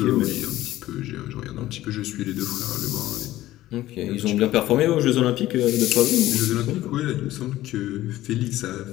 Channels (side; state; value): right; quieter; 15.3 dB